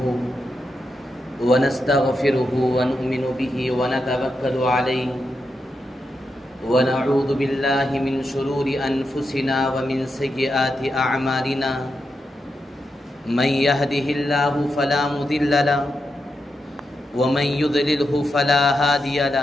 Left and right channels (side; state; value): both; normal; correlation 0.86